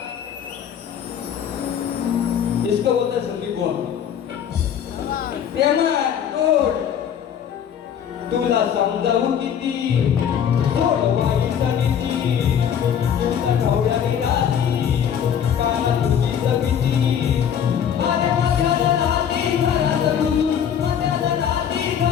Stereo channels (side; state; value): right; quieter; 8.6 dB